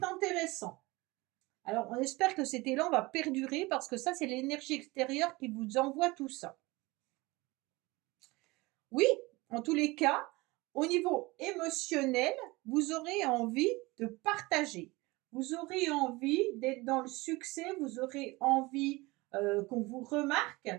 intéressant. Alors, on espère que cet élan va perdurer parce que ça, c'est l'énergie extérieure qui vous envoie tout ça. Oui, en tous les cas, au niveau émotionnel, vous aurez envie de partager. Vous aurez envie d'être dans le succès, vous aurez envie qu'on vous remarque,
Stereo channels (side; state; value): left; quieter; 22.5 dB